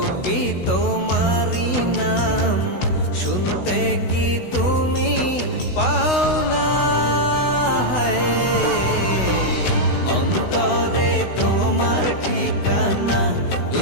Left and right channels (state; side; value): late; right; 16 ms